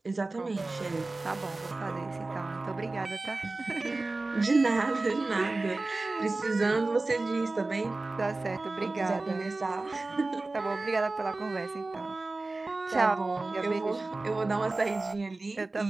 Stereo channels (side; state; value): left; quieter; 3.2 dB